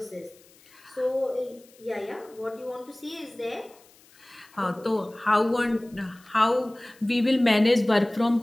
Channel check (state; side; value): noise; left; hiss, 27 dB below the sound